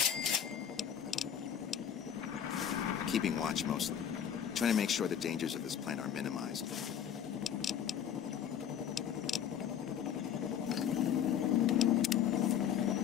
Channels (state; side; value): quieter; right; 8.9 dB